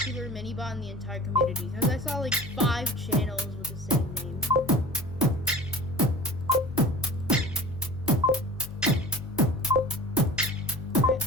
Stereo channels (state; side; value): noise; left; hum, 15 dB below the sound